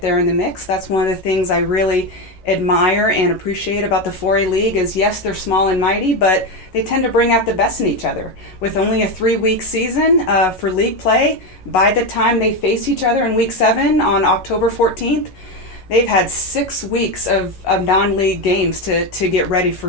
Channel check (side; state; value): right; late; 11 ms